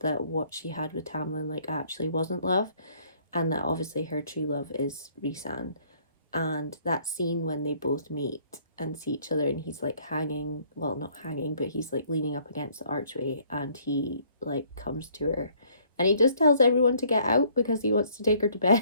what she had with Tamlin like actually wasn't love, and that obviously her true love is Rhysand. And that scene when they both meet and see each other, and he's like hanging, well, not hanging, but he's like leaning up against the archway, and he like comes to her and he just tells everyone to get out because he wants to take her to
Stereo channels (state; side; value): inverted; both; correlation -0.61